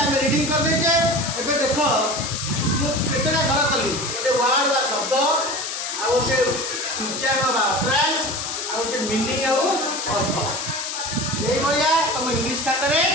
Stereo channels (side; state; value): left; noise; hiss, 5 dB below the sound